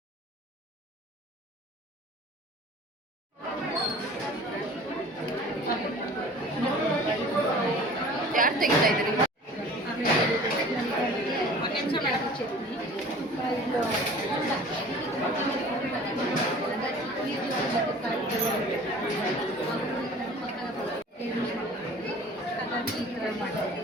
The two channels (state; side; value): normal; both; correlation 0.45